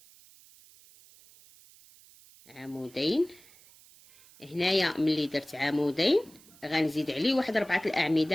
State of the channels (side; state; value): right; noise; hiss, 25 dB below the sound